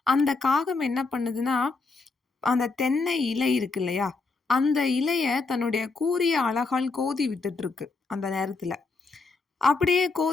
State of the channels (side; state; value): right; quieter; 4.0 dB